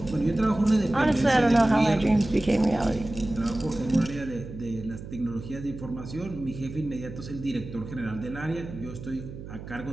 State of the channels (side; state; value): right; noise; hum, 12 dB below the sound